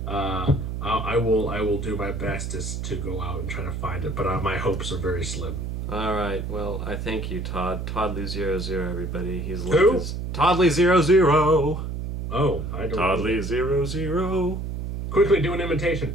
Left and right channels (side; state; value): right; noise; hum, 4 dB below the sound